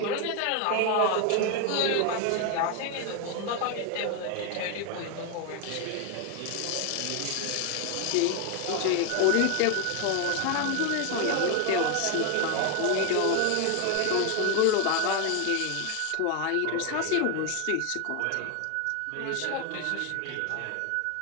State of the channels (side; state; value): both; different; correlation 0.01